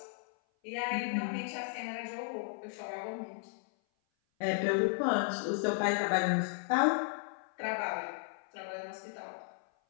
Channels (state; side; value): silent; right; 55 dB below the other